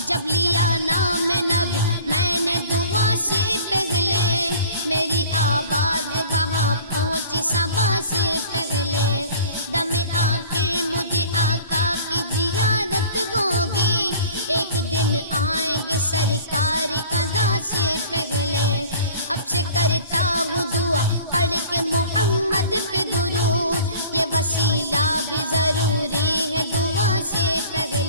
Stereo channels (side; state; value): both; inverted; correlation -0.45